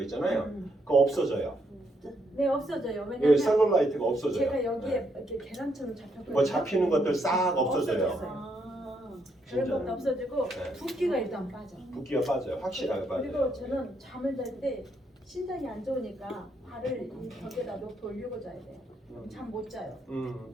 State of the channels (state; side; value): normal; both; correlation 0.76